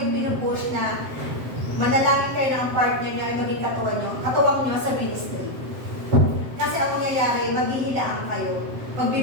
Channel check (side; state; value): left; late; 7.6 ms